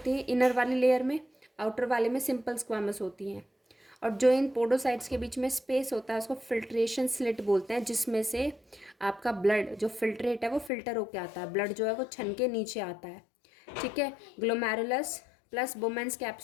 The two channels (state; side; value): drops out; right; at 10.7 s